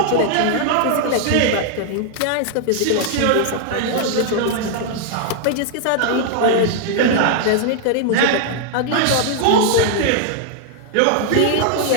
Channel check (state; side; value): different; both; correlation 0.00